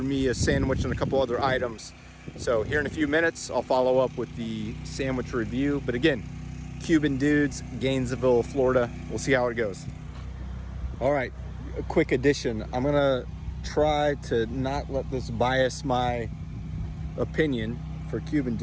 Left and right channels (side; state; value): both; identical; correlation 1.00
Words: me a sandwich and a couple other items. So here in a few minutes, I'll follow up with the sandwich review. But again, Cuban Dudes, Gainesville, Florida. We'll see how it goes. All right, a quick addition. I'm gonna try to not let this bias my opinion for Cuban